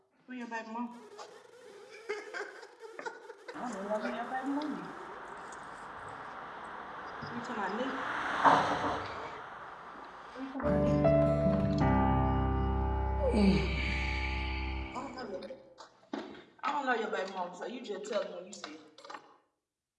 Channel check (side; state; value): both; identical; correlation 1.00